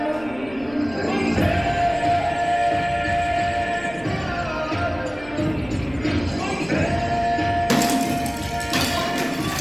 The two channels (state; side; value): noise; left; rumble, 21 dB below the sound